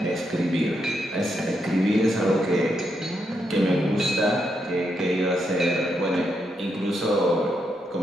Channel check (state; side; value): normal; both; correlation 0.81